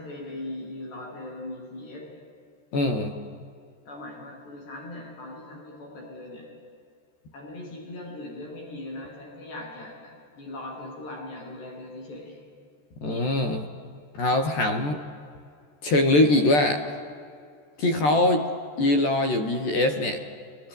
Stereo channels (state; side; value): late; right; 14 ms